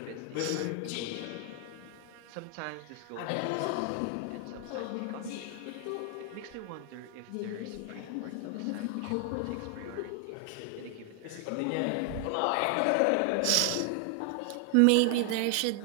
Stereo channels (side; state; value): both; different; correlation 0.00